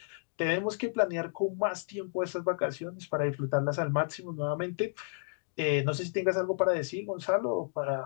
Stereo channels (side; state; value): right; silent; digital silence